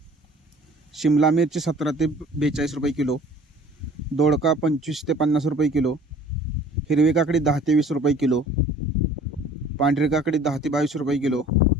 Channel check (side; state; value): both; normal; correlation 0.50